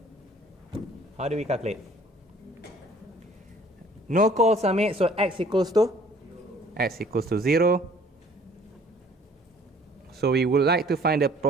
How do we calculate? No calls are made, so x equals to? X equals to 0. So we would like to find the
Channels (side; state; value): both; normal; correlation 0.55